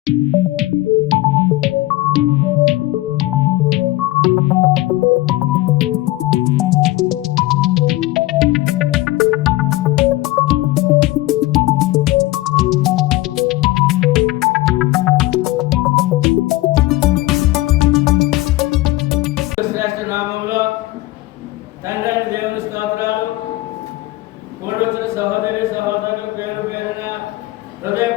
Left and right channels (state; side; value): quieter; right; 18.2 dB